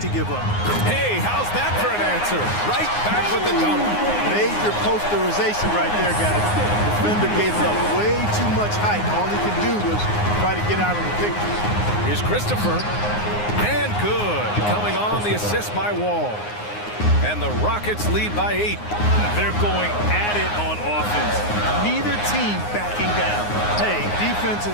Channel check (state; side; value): late; right; 9.6 ms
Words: to give up. Hey, how's that for an answer? Right back with the dunk. Major posterization right there, guys. The defender gave up way too much height. All he could do was try to get out of the picture. Here's Christopher. And good. Coming on the assist by Wall. And the Rockets lead by 8. They're going at it on offense. Neither team backing down. Hey, defense